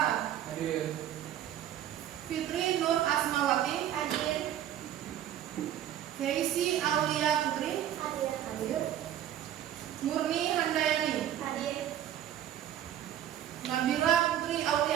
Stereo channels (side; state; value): left; quieter; 11.3 dB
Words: Hadir. Fitri Nur Asmawati, Hadir. Keisi Aulia Putri, Hadir. Murni Handayani, Hadir. Nabila Putri